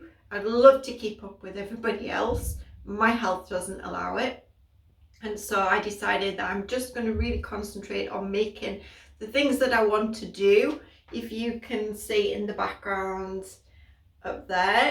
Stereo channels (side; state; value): both; identical; correlation 1.00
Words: I'd love to keep up with everybody else. My health doesn't allow it. And so I decided that I'm just going to really concentrate on making the things that I want to do. If you can see in the background up